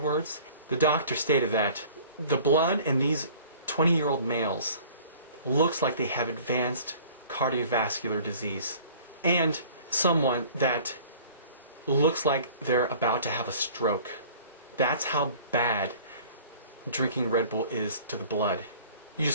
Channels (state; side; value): inverted; both; correlation -0.48